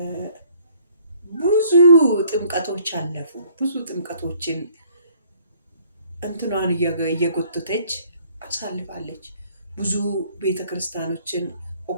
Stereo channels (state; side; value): inverted; both; correlation -0.60